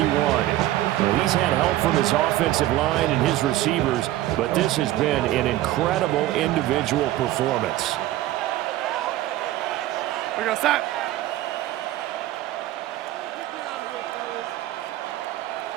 Well, he's had help from his offensive line and his receivers, but this has been an incredible individual performance. We're going to stop.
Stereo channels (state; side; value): quieter; left; 15.0 dB